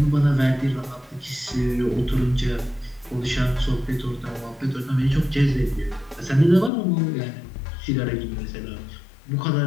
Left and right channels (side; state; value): right; drops out; at 6.7 s